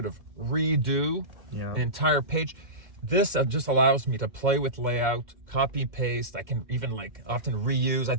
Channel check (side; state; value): left; late; 2.1 ms